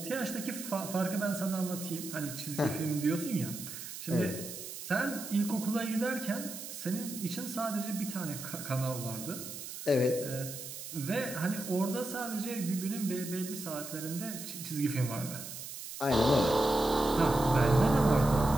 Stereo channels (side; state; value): right; noise; hiss, 10 dB below the sound